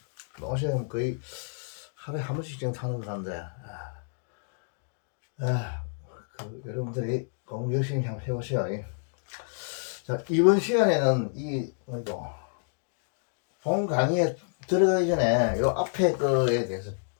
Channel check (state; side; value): silent; right; digital silence